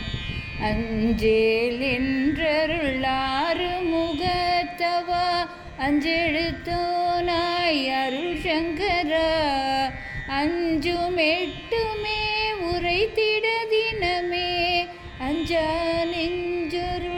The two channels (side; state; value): both; identical; correlation 1.00